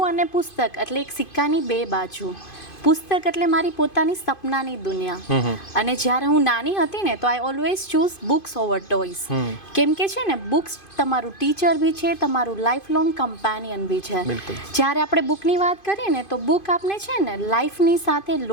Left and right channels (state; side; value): late; right; 2.5 ms